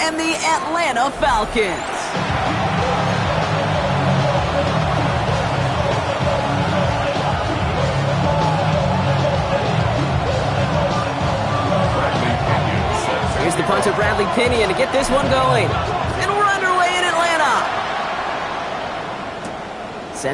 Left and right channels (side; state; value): both; identical; correlation 1.00